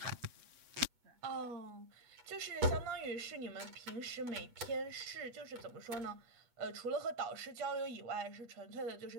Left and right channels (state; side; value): late; left; 8.1 ms